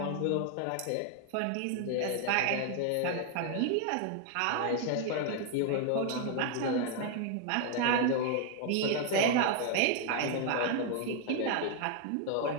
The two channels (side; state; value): both; different; correlation 0.00